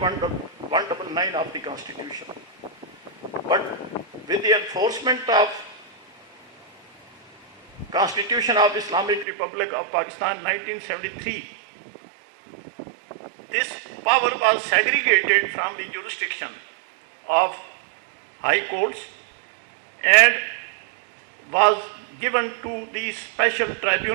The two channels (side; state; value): left; drops out; at 9.2 s